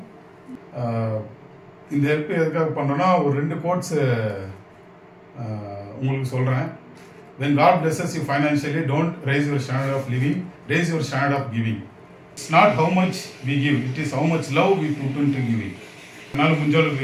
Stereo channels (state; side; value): identical; both; correlation 1.00